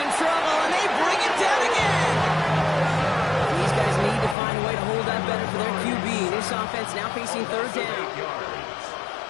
trouble, and they bring him down again. These guys need to find a way to hold up better for their QB. This offense now facing 3rd down.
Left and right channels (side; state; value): right; drops out; at 4.4 s